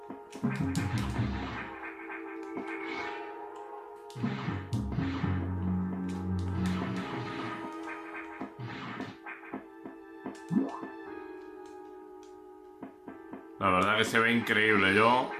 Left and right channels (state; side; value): identical; both; correlation 1.00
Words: La verdad que se ve increíble. Yo,